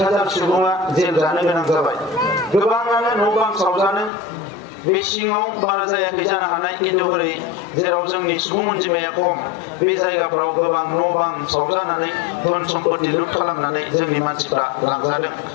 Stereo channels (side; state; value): right; drops out; at 4.1 s